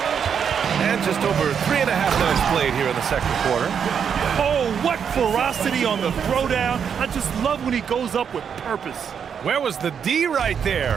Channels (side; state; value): left; quieter; 7.4 dB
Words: And just over 3.5 minutes played here in the second quarter. Oh, what ferocity on the throwdown. I just love when he goes up with purpose. Where was the D right